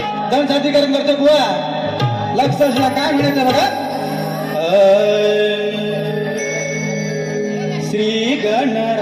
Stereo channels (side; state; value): both; identical; correlation 1.00